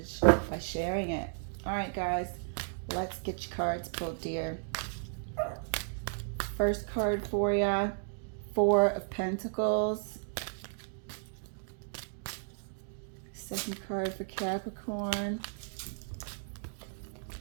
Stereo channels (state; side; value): silent; left; digital silence